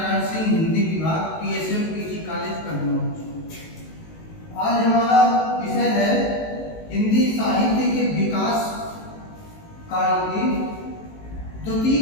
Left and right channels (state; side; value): late; right; 19 ms